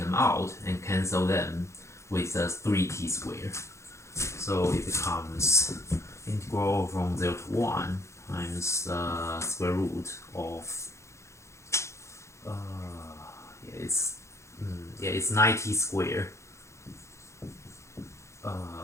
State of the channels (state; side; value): late; right; 0.14 ms